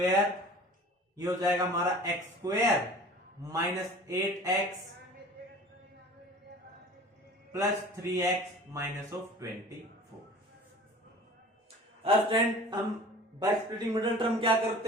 ये हो जाएगा हमारा x² minus 8x plus 3x minus of 24। अब स्टूडेंट हम बाय स्प्लिटिंग मिडिल टर्म क्या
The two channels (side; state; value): both; normal; correlation 0.43